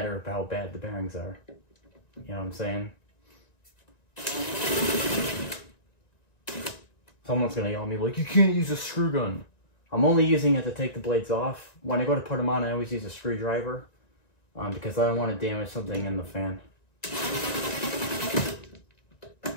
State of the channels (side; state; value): right; late; 1.9 ms